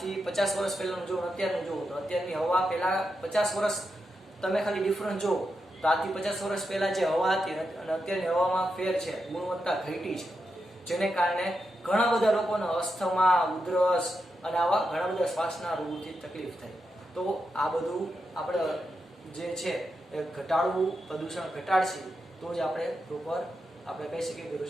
50 વર્ષ પહેલાનું જો અત્યારનું જુઓ તો અત્યારની હવા પહેલા 50 વર્ષ તમે ખાલી ડિફરન્સ જુઓ તો આજથી 50 વર્ષ પહેલા જે હવા હતી અને અત્યારની હવામાં ફેર છે, ગુણવત્તા ઘટી છે. જેને કારણે ઘણા બધા લોકોને અસ્થમા, ઉધરસ અને આવા ઘણા બધા શ્વાસના રોગોથી તકલીફ થાય. તો આ બધું આપણે જે છે એ ઘટાડવું, પ્રદૂષણ ઘટાડશે તો જ આપણે પ્રોપર આપણે કહી શકીએ કે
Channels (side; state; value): both; normal; correlation 0.86